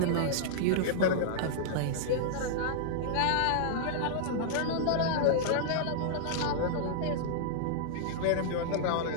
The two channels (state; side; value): different; both; correlation -0.02